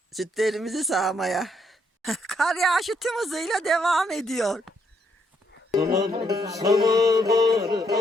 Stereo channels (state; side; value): normal; both; correlation 0.74